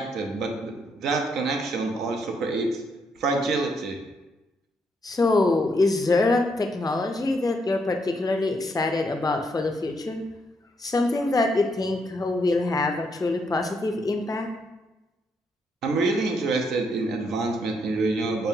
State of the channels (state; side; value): normal; both; correlation 0.76